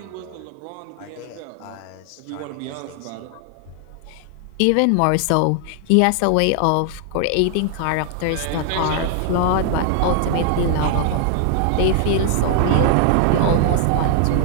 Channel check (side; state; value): both; different; correlation 0.00